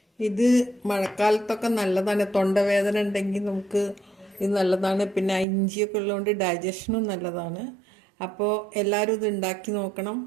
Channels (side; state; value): left; drops out; at 5.5 s